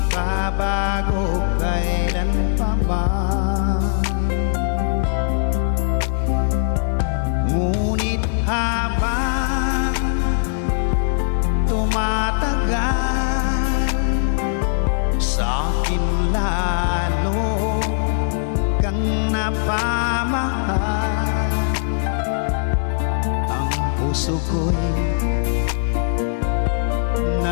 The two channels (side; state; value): right; silent; digital silence